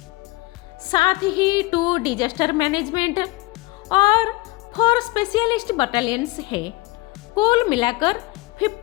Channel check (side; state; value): right; quieter; 21.7 dB